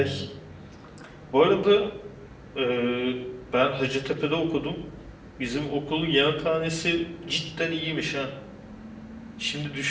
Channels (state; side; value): identical; both; correlation 1.00